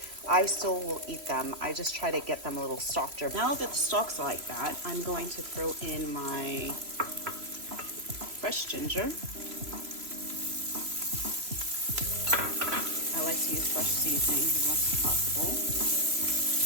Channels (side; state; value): left; late; 3.0 ms